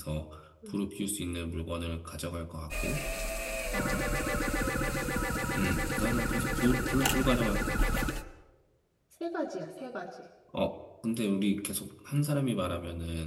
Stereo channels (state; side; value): identical; both; correlation 1.00